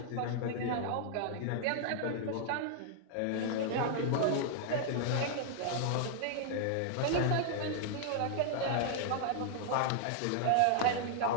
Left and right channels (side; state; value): both; different; correlation -0.01